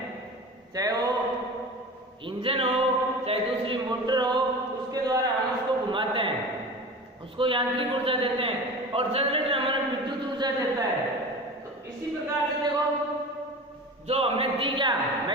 चाहे वो इंजन हो चाहे दूसरी मोटर हो, उसके द्वारा हम उसको घुमाते हैं, उसको यांत्रिक ऊर्जा देते हैं और जनरेटर हमें विद्युत ऊर्जा देता है। तो इसी प्रकार से देखो जो हमने दी क्या,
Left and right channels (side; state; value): both; normal; correlation 0.34